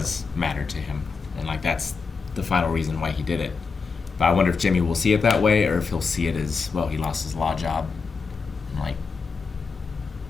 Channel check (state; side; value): quieter; right; 4.9 dB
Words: matter to him. And, like, that's the final reason why he did it. But I wonder if Jimmy will see it that way or if he'll see it as, well, he lost his law job. And, like,